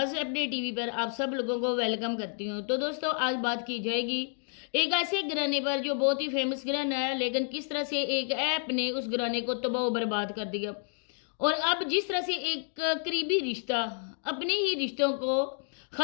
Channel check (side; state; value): right; silent; 55 dB below the other